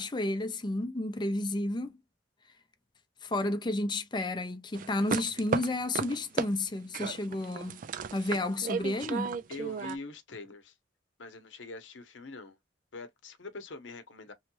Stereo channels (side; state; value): both; normal; correlation 0.55